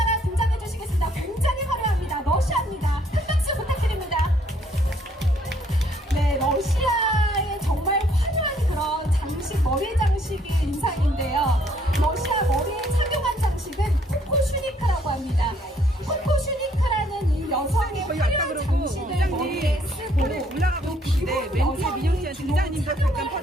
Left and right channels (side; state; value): both; normal; correlation 0.66